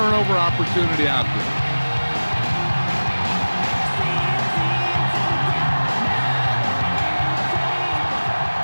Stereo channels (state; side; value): inverted; both; correlation -1.00